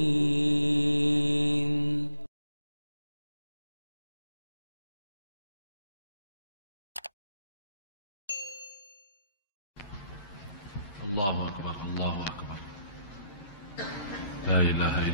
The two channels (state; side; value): inverted; both; correlation -0.74